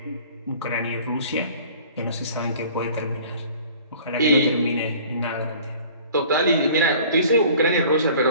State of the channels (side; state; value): both; inverted; correlation -0.48